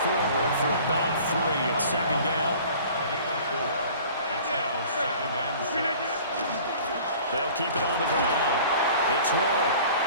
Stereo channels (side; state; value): both; inverted; correlation -0.47